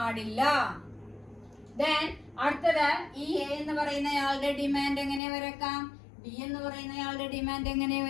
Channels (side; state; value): right; drops out; at 5.2 s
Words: ദെൻ അടുത്തത് ഈ എ എന്ന് പറയുന്നയാളുടെ ഡിമാൻഡ് എങ്ങനെ വരക്കാം, ബി എന്ന് പറയുന്നയാളുടെ ഡിമാൻഡ് എങ്ങനെ